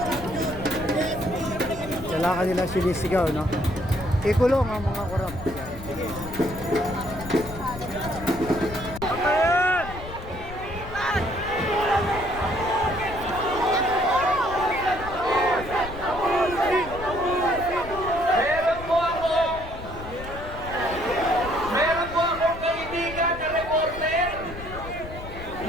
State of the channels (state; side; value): noise; left; rumble, 12 dB below the sound